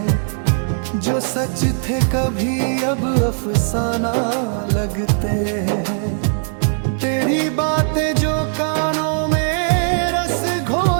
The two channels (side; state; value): left; silent; digital silence